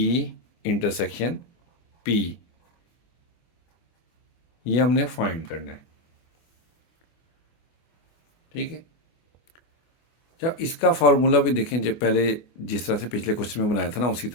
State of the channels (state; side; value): late; right; 24 ms